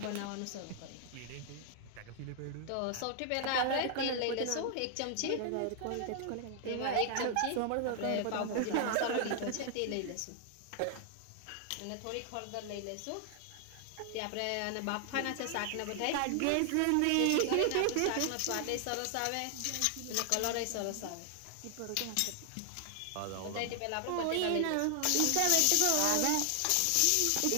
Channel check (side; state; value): both; different; correlation 0.00